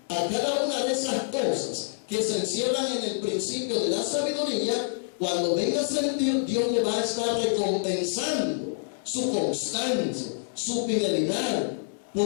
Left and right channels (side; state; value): right; silent; 60 dB below the other